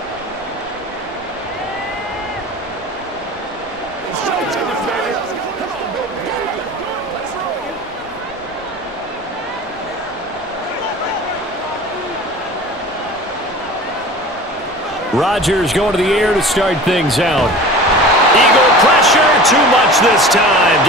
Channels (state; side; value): normal; both; correlation 0.39